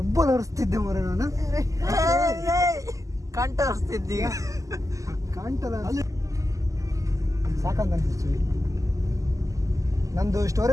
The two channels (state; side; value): late; left; 0.16 ms